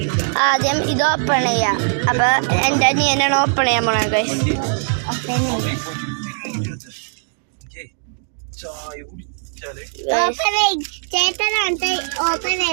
ആദ്യം ഇത് ഓപ്പൺ ചെയ്യാം. അപ്പൊ എന്റെ അനിയനാണ് ഓപ്പൺ ചെയ്യാൻ പോണത് ഗൈസ്.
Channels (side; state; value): left; silent; digital silence